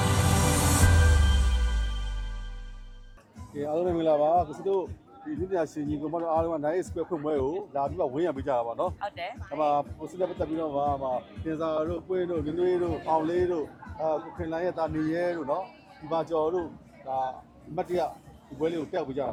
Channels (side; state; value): both; identical; correlation 1.00